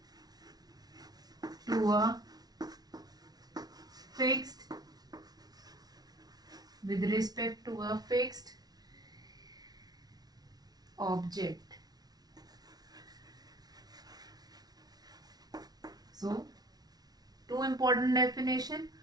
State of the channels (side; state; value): left; late; 0.19 ms